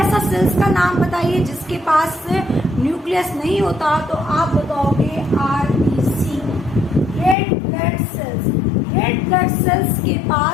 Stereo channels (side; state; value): right; drops out; at 7.4 s